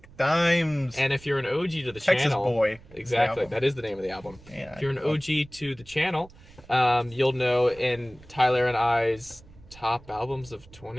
Dimes. And if you're an OG to the Texas channel, Boy. exactly, that is the name of the album. Yeah, if you're an OG to the channel, you'll know in Tyler and I's top albums of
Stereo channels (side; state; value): right; noise; rumble, 22 dB below the sound